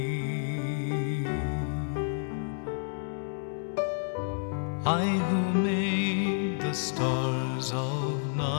I who made the stars of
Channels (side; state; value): right; silent; digital silence